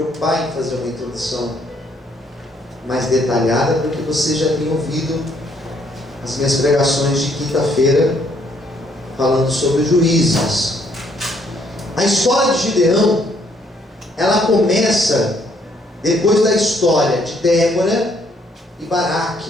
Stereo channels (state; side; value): normal; both; correlation 0.68